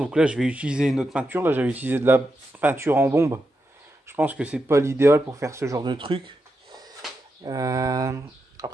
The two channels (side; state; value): both; normal; correlation 0.86